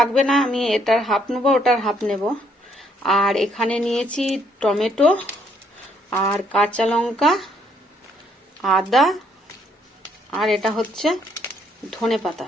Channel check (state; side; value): normal; both; correlation 0.69